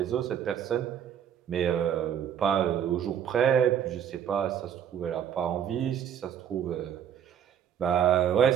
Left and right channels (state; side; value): quieter; left; 9.1 dB